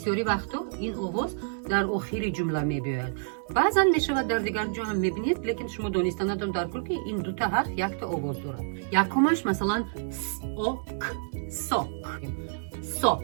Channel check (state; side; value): silent; left; digital silence